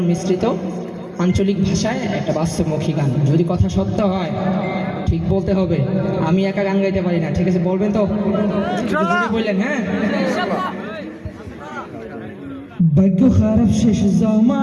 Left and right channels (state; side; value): identical; both; correlation 1.00